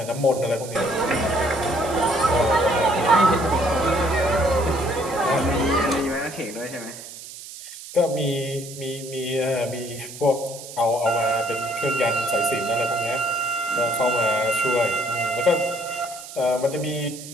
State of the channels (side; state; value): right; noise; hiss, 14 dB below the sound